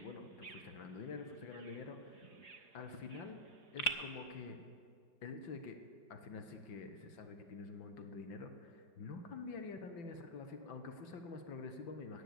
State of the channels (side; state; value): right; late; 4.9 ms